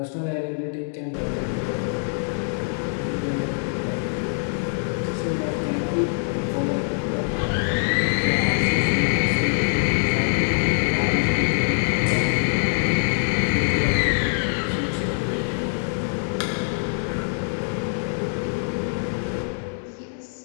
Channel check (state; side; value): silent; right; 63 dB below the other